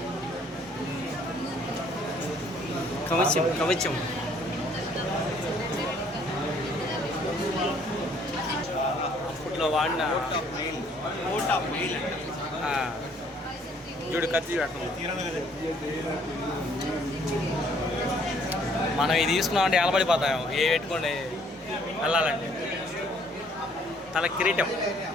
కవచం కవచం అప్పట్లో వాడిన చూడు కత్తి మనం ఇది తీసుకున్నామంటే ఎలబడిపోతాం ఏ పెట్టుకోండి వెళ్ళాలంటే. తల కిరీటం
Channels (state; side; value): normal; both; correlation 0.62